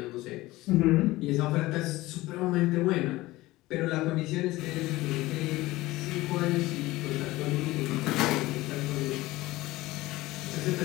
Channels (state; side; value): quieter; right; 18.7 dB